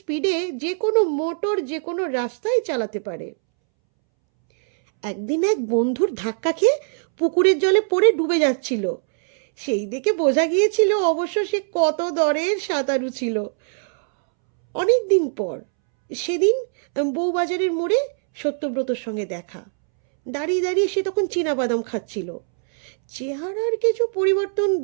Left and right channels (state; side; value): silent; left; 64 dB below the other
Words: যে কোনো মোটর যে কোনো রাস্তায় চালাতে পারে। একদিন এক বন্ধুর ধাক্কা খেয়ে পুকুরের জলে পড়ে ডুবে যাচ্ছিল। সেই দেখে বোঝা গিয়েছিল অবশ্য সে কত দরের সাঁতারু ছিল। অনেক দিন পর সেদিন বউবাজারের মোড়ে সত্যব্রতর সঙ্গে দেখা। দাঁড়িয়ে দাঁড়িয়ে সে তখন চীনাবাদাম খাচ্ছিল। চেহারার কিছু পরিবর্তন